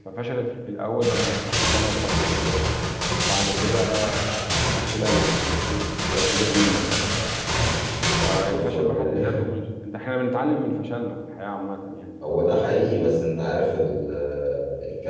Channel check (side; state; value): both; identical; correlation 1.00